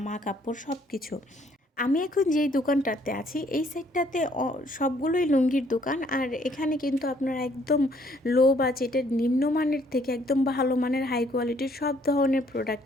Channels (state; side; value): normal; both; correlation 0.64